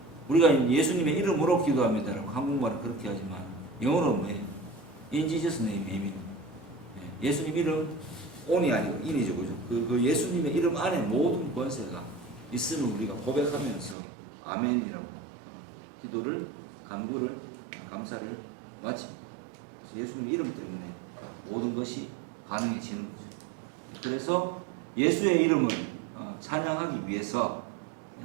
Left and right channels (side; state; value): left; drops out; at 14.0 s